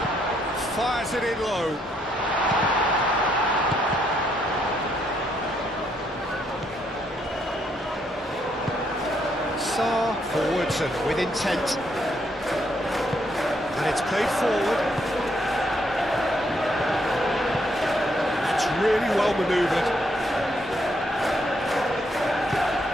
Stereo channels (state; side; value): normal; both; correlation 0.74